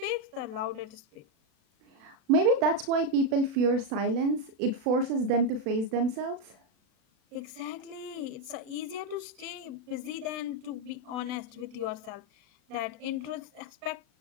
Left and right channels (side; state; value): left; late; 36 ms